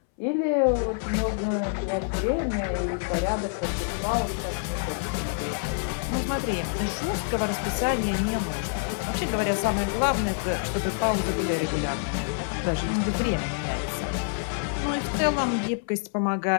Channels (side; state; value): right; silent; 60 dB below the other